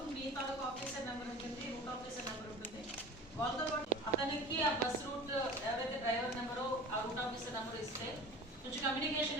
మీ తాలూకు ఆఫీసర్ నెంబర్ ఉంటుంది, రూట్ ఆఫీసర్ నెంబర్ ఉంటుంది. వాళ్ళతో పాటు అతనికి ఆ బస్ రూట్ ఎవరైతే డ్రైవర్ నెంబరో ఆ రూట్ ఆఫీసర్ నెంబర్ ఇస్తే కొంచెం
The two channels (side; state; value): both; normal; correlation 0.38